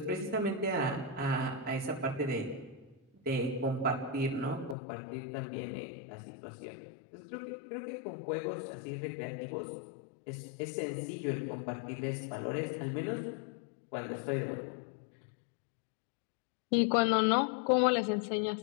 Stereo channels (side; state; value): right; drops out; at 4.8 s